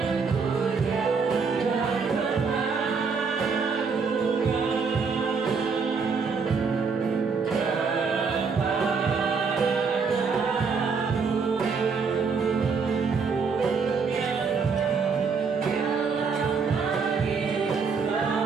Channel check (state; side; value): quieter; left; 5.3 dB